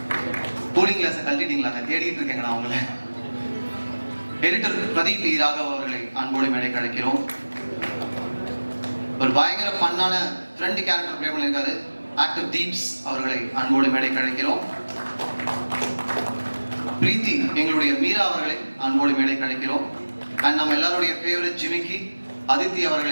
கூலிங் கிளாஸை கழட்டிட்டீங்களா? தேடிட்டு இருக்கேங்க நான் அவங்கள. எடிட்டர் பிரதீப் ராகவ் அவர்களை அன்போடு மேடை கிடைக்கிறோம். ஒரு பயங்கர ஃபன்னான ஃப்ரெண்ட் கேரக்டர் பிளே பண்ணியிருக்காரு ஆக்டர் தீப்ஸ் அவர்களை அன்போடு மேடை கிடைக்கிறோம். பிரீத்தி எங்களுடைய மீரா அவர்களை அன்போடு மேடை கிடைக்கிறோம். அண்ட் நம்ம எல்லாருடைய ஃபேவரட் ஜிமிக்கி அதித்தி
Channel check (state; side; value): inverted; both; correlation -1.00